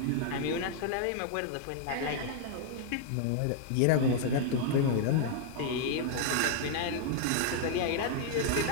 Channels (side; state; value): both; different; correlation 0.00